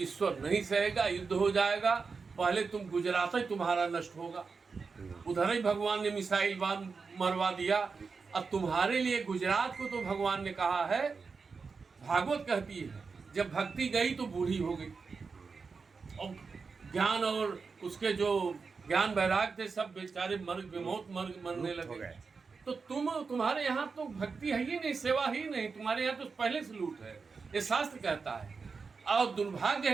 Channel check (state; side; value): quieter; left; 4.9 dB